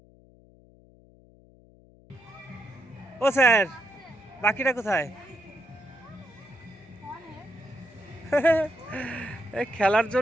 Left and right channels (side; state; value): left; noise; hum, 26 dB below the sound